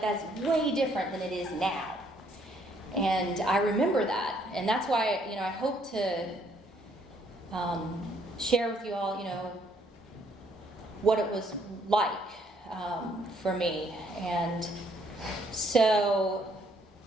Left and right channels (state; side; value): normal; both; correlation 0.67